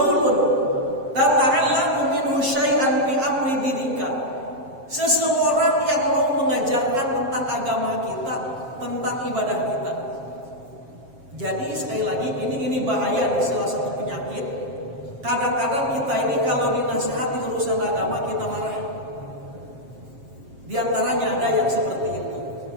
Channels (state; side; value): late; left; 7.5 ms